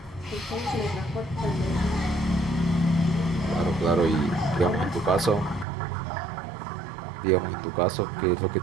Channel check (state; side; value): drops out; left; at 5.7 s